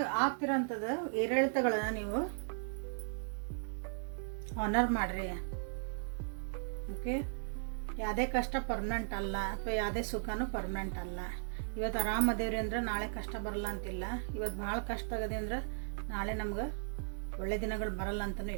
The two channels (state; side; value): silent; left; digital silence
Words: ಆಗ್ತಿರೋಂಥದ್ದು ಏರಿಳಿತಗಳನ್ನ ನೀವು ಆನರ್ ಮಾಡ್ರಿ. ಓಕೆ, ಯಾವುದೇ ಕಷ್ಟ ಪರ್ಮನೆಂಟ್ ಅಲ್ಲ ಅಥವಾ ಯಾವುದೇ ಸುಖನೂ ಪರ್ಮನೆಂಟ್ ಅಲ್ಲ. ಇವತ್ತು ಆರಾಮದೇವ್ರಿ ಅಂದ್ರೆ ನಾಳೆ ಕಷ್ಟ ಬರಲ್ಲ ಅಂತಿಲ್ಲ. ಇವತ್ತು ಭಾಳ ಕಷ್ಟ ಆಗದೆ ಅಂದ್ರೆ ನಾಳೆ ನಮ್ಗೆ ಒಳ್ಳೆ ದಿನಗಳು ಬರಲ್ಲ ಅಂತನೂ